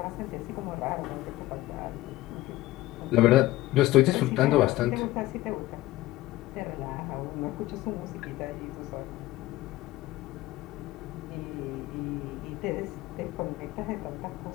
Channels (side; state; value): right; quieter; 17.1 dB